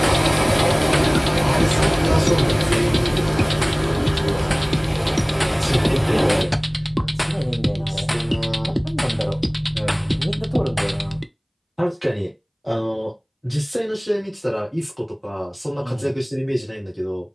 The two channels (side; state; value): both; identical; correlation 1.00